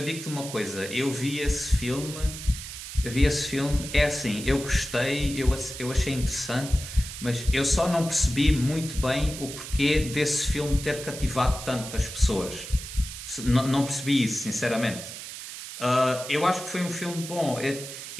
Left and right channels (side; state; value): right; noise; hiss, 10 dB below the sound